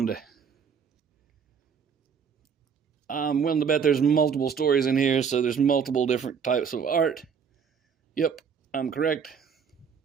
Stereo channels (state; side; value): quieter; left; 6.7 dB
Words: I'm willing to bet there's multiple stories in here, so there's multiple different types of art. Yep, I'm correct.